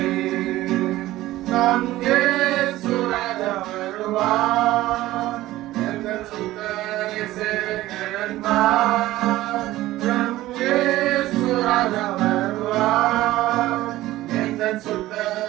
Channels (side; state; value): left; quieter; 16.2 dB